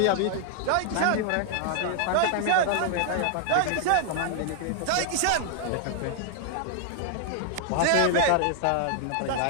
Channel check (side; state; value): both; different; correlation 0.00